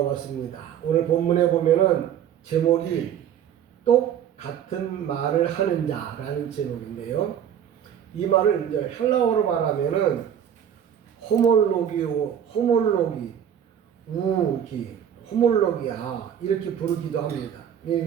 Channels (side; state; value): left; quieter; 9.2 dB